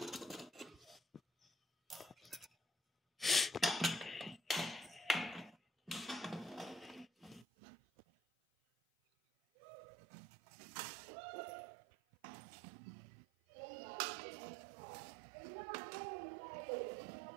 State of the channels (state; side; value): drops out; left; at 7.5 s